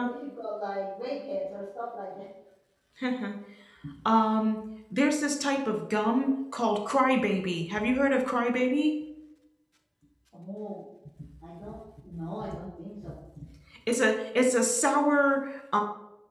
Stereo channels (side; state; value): both; identical; correlation 1.00